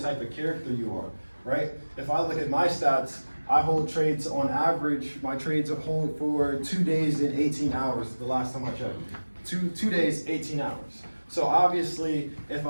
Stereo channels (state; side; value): inverted; both; correlation -1.00